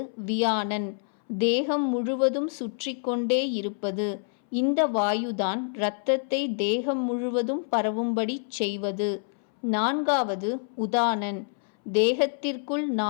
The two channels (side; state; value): right; silent; 60 dB below the other